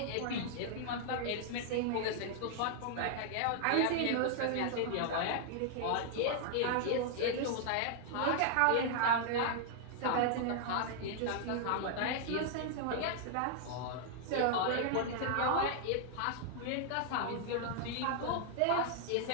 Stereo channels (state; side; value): different; both; correlation -0.01